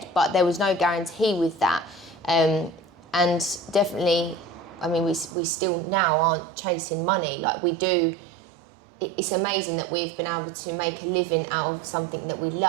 but there was no guarantee with that. And definitely, we still now aren't chasing money like we do. It's amazing that we've been able to make a living out of something that we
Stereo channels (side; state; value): left; drops out; at 5.4 s